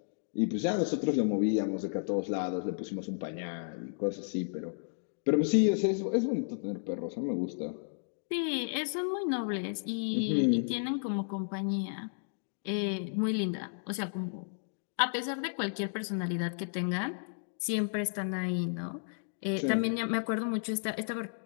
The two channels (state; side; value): silent; right; digital silence